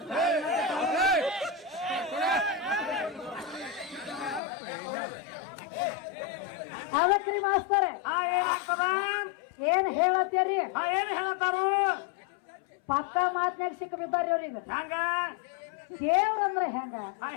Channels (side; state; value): right; drops out; at 4.4 s